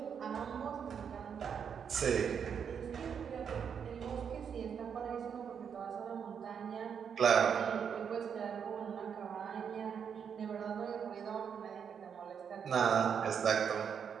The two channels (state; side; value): quieter; left; 7.3 dB